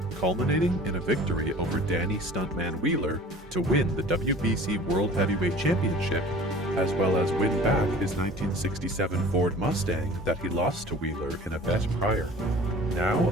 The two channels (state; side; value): normal; both; correlation 0.44